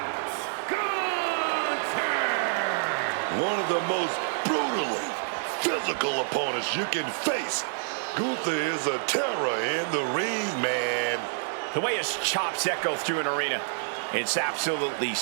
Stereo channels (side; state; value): left; silent; 60 dB below the other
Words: Gunther! One of the most brutally physical opponents you can face. Gunther is a terror in the ring, man. The way his chops echo through an arena, it's absolutely